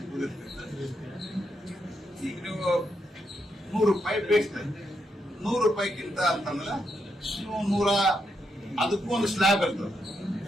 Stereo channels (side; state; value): both; normal; correlation 0.81